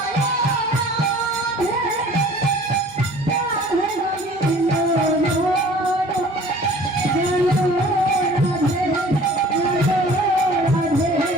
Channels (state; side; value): normal; both; correlation 0.49